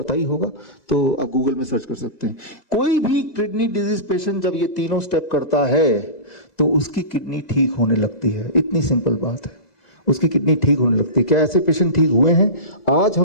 ही होगा, तो आप गूगल में सर्च कर सकते हैं। कोई भी किडनी डिजीज पेशेंट जब ये तीनों स्टेप करता है तो उसकी किडनी ठीक होने लगती है। इतनी सिंपल बात है, उसकी किडनी ठीक होने लगती है। क्या ऐसे पेशेंट ठीक हुए हैं? आज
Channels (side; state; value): right; late; 1.9 ms